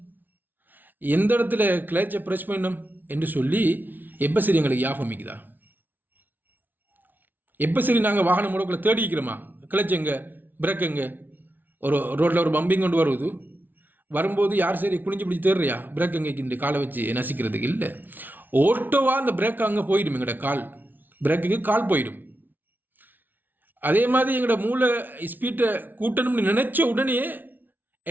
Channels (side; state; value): left; late; 0.088 ms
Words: எந்த இடத்துல கிளச்சை ப்ரெஸ் பண்ணினோம் என்று சொல்லி எப்போ சரி எங்களுக்கு ஞாபகம் இருக்குதா? எப்போ சரி நாங்கள் வாகனம் முடக்கில் தேடிக்கிறோமா? கிளச் எங்கே, பிரேக் எங்கே? ஒரு ரோட்டில் ஒரு பம்பிங் கொண்டு வரும்போது யார் சரி குனிஞ்சு பிடிச்சி தேடுறியா பிரேக் எங்கே இந்த காலை வச்சு நசிக்கிறதுக்கு? இல்லை, ஓட்டோவாக அந்த பிரேக் அங்கே போயிடும், எங்களோட கால் பிரேக்குக்கு கால் போயிடும். அதே மாதிரி எங்களோட மூளை ஸ்பீட்டை கூட்டணும்னு நினச்ச உடனே